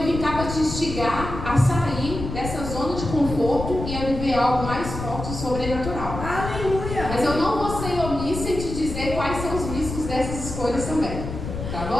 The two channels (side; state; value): left; noise; rumble, 6 dB below the sound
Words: vim cá para te instigar a sair dessa zona de conforto e a viver algo mais forte e sobrenatural. Aleluia! Mas eu não vou ser omissa em te dizer quais são os riscos dessas escolhas também. Tá